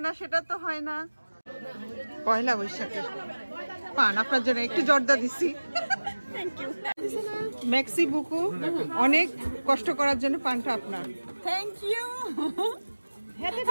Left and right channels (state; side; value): inverted; both; correlation -1.00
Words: না, সেটা তো হয় না। পয়লা বৈশাখের পান আপনার জন্য একটু জর্দা দিছি। মেক্সি বুকু, অনেক কষ্ট করার জন্য পানটা আপনার। Thank you.